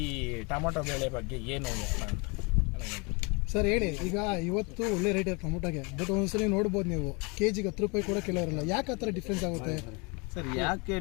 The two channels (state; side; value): quieter; right; 30.0 dB